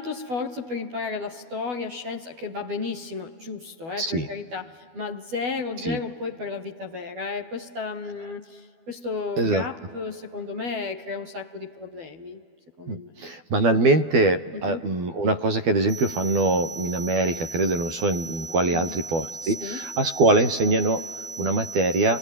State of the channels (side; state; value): left; late; 12 ms